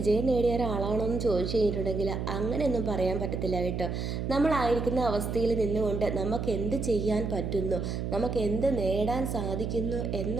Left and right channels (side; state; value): right; noise; hum, 3 dB below the sound